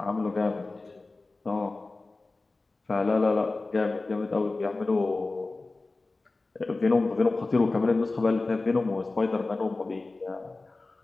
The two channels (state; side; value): quieter; right; 3.4 dB